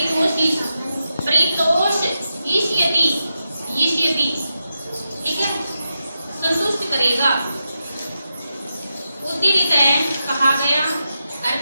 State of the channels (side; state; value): both; inverted; correlation -0.87